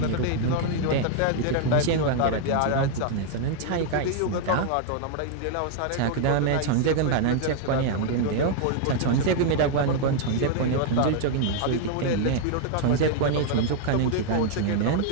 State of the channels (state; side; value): different; both; correlation 0.00